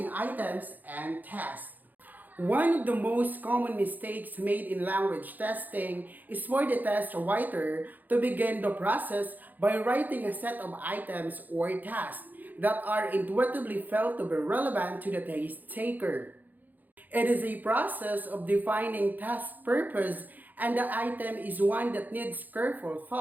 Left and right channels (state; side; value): late; left; 0.084 ms